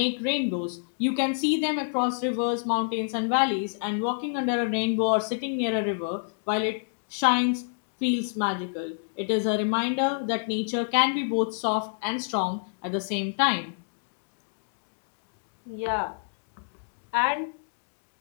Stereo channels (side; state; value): right; silent; digital silence